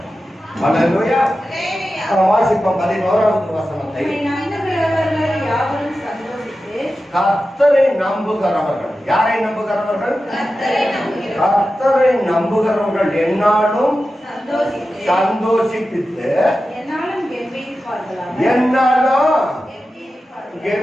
அல்லேலூயா. வாசிப்போம் 11வது வசனத்தை. கர்த்தரை நம்புகிறவர்கள், யாரை நம்புகிறவர்கள்? கர்த்தரை நம்புகிறவர்கள் என்னாலும் சந்தோஷிப்பித்து என்னாலும்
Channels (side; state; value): both; normal; correlation 0.93